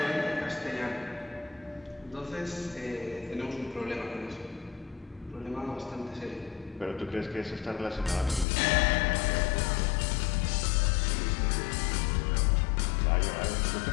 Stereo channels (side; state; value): right; drops out; at 8.5 s